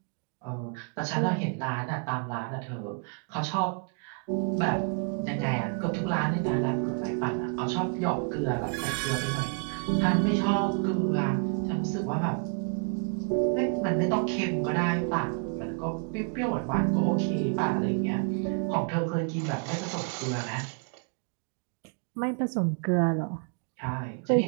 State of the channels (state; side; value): quieter; left; 37.6 dB